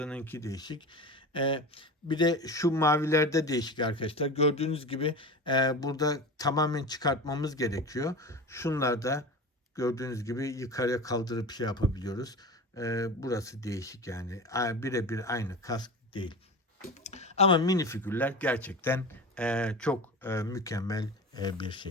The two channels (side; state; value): both; normal; correlation 0.30